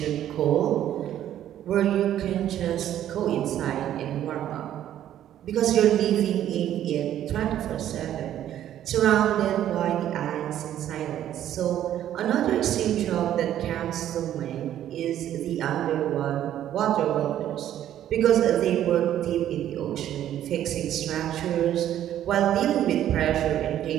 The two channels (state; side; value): quieter; left; 11.5 dB